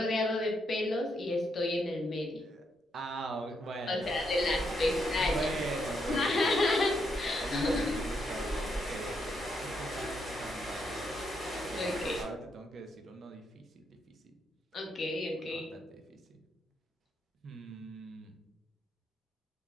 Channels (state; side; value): normal; both; correlation 0.78